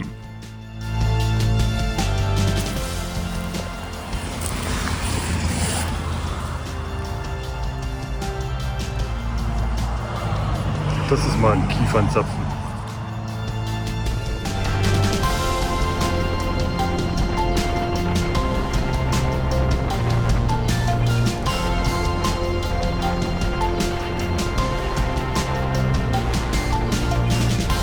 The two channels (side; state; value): both; identical; correlation 1.00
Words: Das ist mal ein Kiefernzapfen.